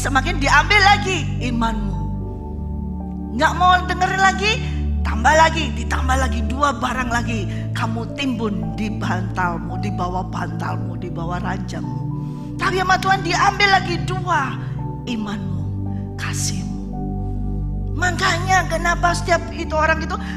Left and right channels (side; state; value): both; identical; correlation 1.00